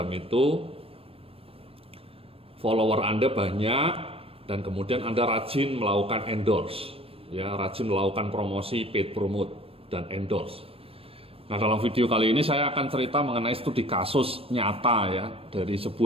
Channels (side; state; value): left; late; 0.28 ms